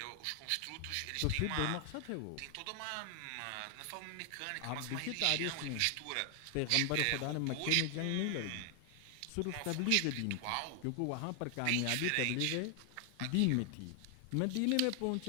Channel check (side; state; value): both; different; correlation 0.00